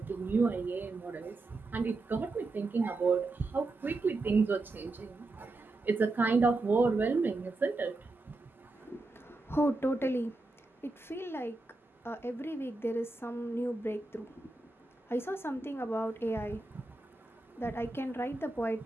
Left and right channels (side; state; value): left; quieter; 3.1 dB